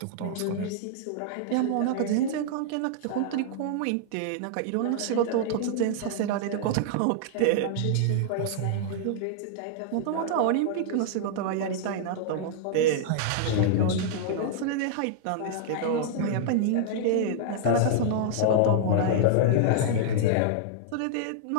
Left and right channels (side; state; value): both; different; correlation -0.01